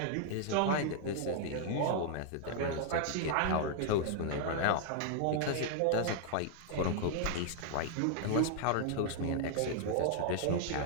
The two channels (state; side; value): different; both; correlation 0.00